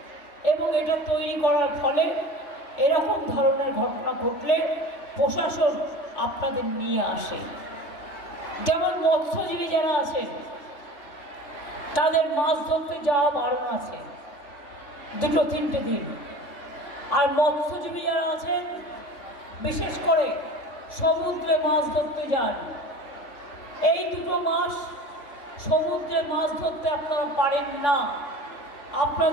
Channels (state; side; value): late; right; 3.6 ms